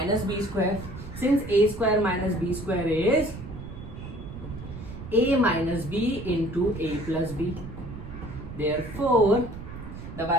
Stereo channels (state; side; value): noise; right; rumble, 11 dB below the sound